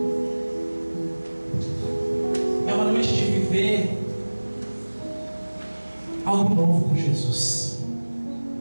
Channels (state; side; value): inverted; both; correlation -1.00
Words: É uma noite de viver algo novo com Jesus.